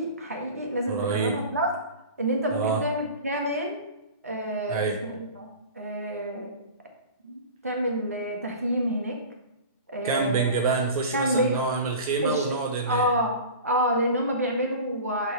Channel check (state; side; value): inverted; both; correlation -0.36